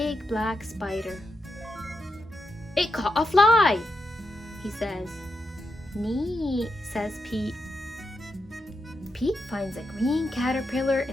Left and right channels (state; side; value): normal; both; correlation 0.85